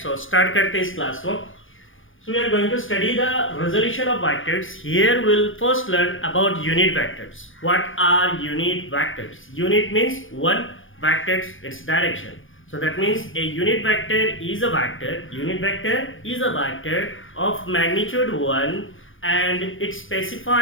so start करते हैं इस class को. So we are going to study the resolution of vectors. Here we'll first learn about unit vectors. What are unit vectors? Unit means one, vectors its direction. So that means a unit vector is a vector. Unit vector is a vector of magnitude 1 and it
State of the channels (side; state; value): right; late; 0.58 ms